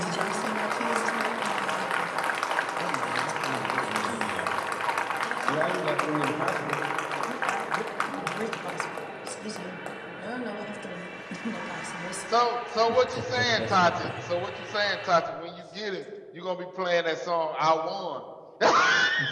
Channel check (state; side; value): identical; both; correlation 1.00